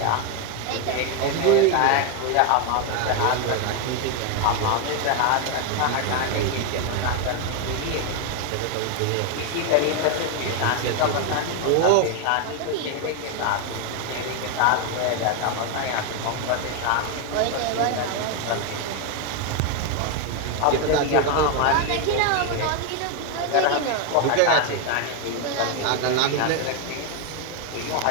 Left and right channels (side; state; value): both; different; correlation 0.01